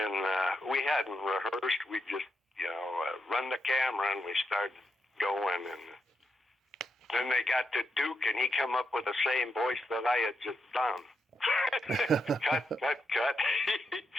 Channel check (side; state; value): both; normal; correlation 0.83